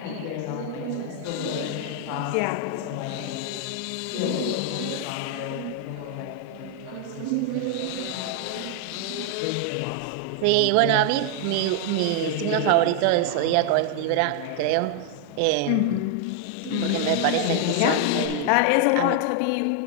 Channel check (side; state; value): both; different; correlation 0.00